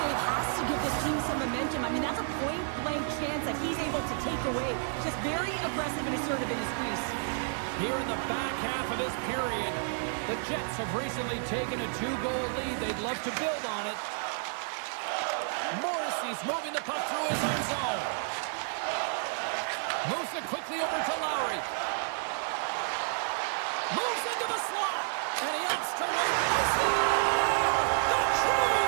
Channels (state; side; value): silent; left; 55 dB below the other